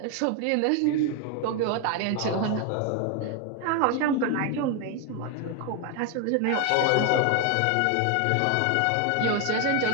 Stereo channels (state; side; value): different; both; correlation 0.01